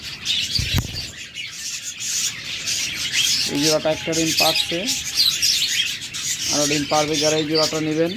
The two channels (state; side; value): identical; both; correlation 1.00